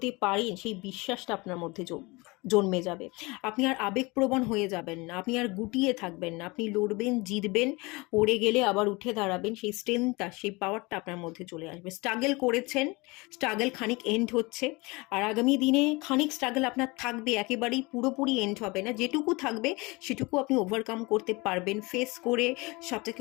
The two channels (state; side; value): quieter; right; 25.1 dB